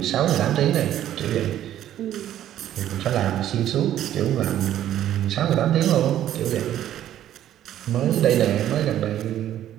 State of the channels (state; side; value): quieter; left; 11.8 dB